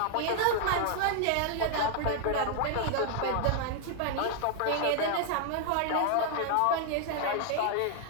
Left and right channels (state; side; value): different; both; correlation 0.00